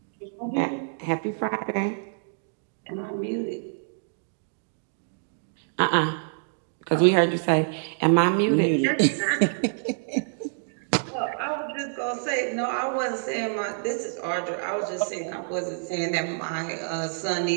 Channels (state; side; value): silent; left; digital silence